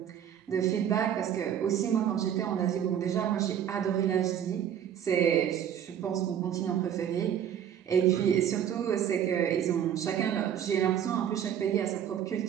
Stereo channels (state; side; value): quieter; left; 9.5 dB